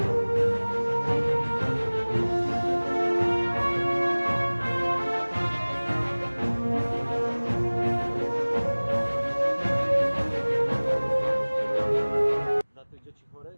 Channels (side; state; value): both; inverted; correlation -1.00